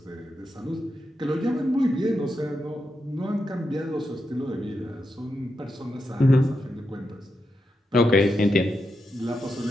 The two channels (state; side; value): normal; both; correlation 0.86